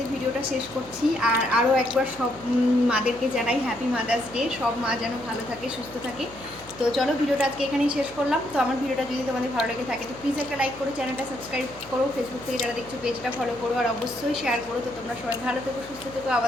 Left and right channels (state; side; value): noise; left; hum, 21 dB below the sound